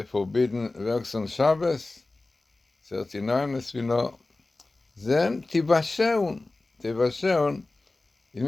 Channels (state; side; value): quieter; right; 3.1 dB